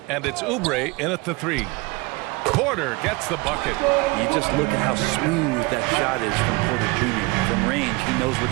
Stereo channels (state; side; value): quieter; left; 25.4 dB